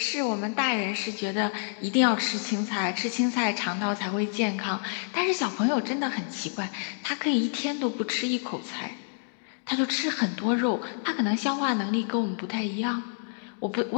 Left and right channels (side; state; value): right; silent; digital silence